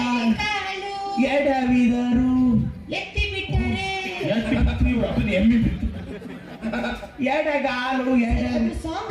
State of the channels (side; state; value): both; identical; correlation 1.00